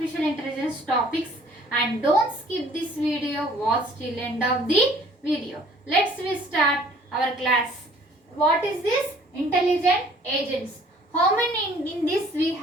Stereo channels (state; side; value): normal; both; correlation 0.55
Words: intelligence topics, and don't skip this video, watch till end of the video. Let's start our class. What is this? Intelligent agents. How many in this we